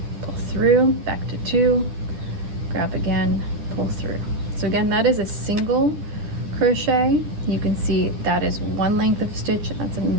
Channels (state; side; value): late; left; 10 ms